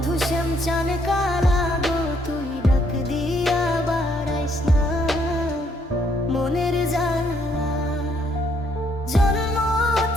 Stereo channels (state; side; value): normal; both; correlation 0.70